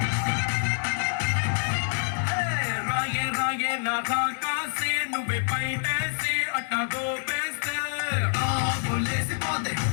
రాగే రాగే నా కాకాసే నువ్వే పైటేసి అట్టా గోపేస్తే బోలేసి పోతే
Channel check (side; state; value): right; silent; 60 dB below the other